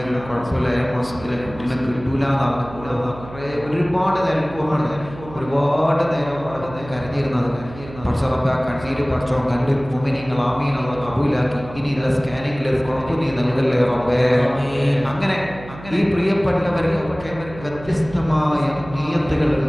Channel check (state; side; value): noise; right; hum, 16 dB below the sound